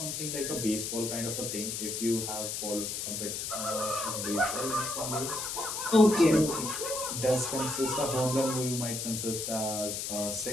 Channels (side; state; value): left; noise; hiss, 3 dB below the sound